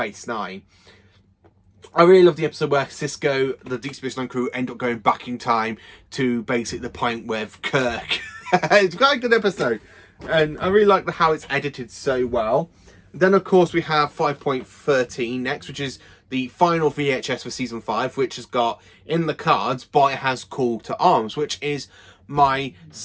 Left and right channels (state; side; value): identical; both; correlation 1.00